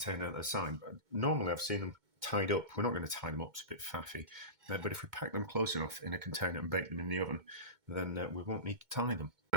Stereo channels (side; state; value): left; late; 2.2 ms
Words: at the side. But normally I've seen them tied up. We're not going to tie them up, it's a bit faffy. But if we pack them close enough in a container and bake them in the oven, then we won't need to tie them.